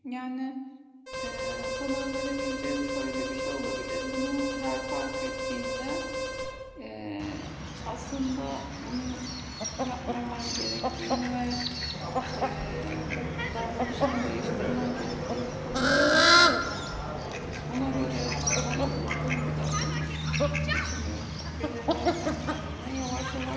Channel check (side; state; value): both; identical; correlation 1.00